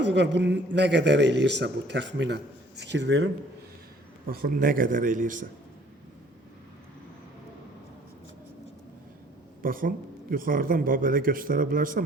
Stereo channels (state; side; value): normal; both; correlation 0.56